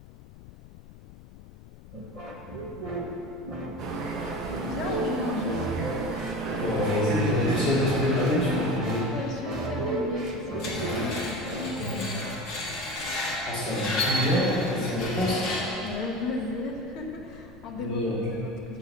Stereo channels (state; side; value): noise; left; rumble, 19 dB below the sound